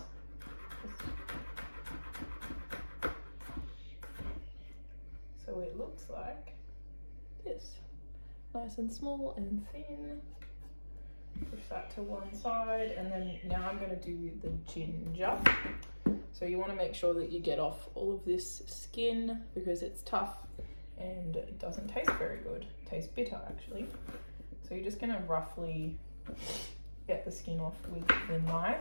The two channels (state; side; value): inverted; both; correlation -1.00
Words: So it looks like this. Nice and small and thin. Push that to one side, and then now I'm going to do the ginger. So you want to make sure that you get off all of this skin because it's tough and it doesn't taste very good. It tastes bitter actually. So you're just going to roughly get the skin off with the